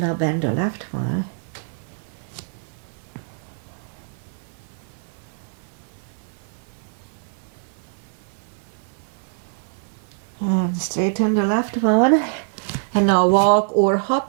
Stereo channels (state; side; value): silent; left; 63 dB below the other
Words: now bend the left one. And straighten the left one. And now walk or